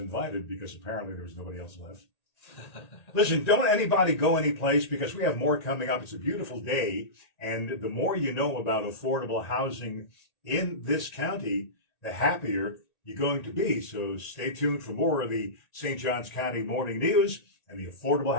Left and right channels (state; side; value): late; right; 1.9 ms